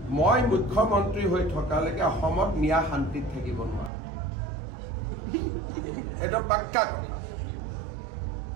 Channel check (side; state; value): left; drops out; at 3.9 s